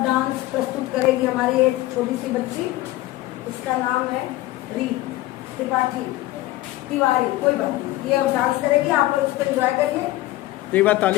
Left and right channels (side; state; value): right; quieter; 17.1 dB